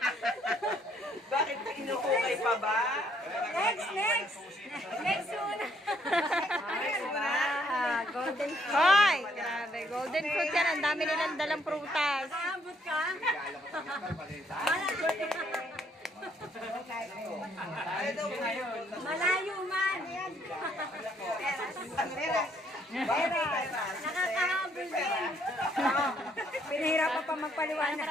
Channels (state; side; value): normal; both; correlation 0.68